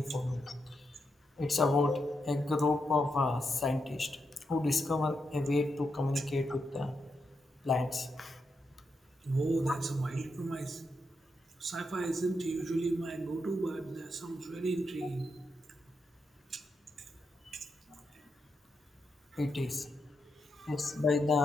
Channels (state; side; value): normal; both; correlation 0.84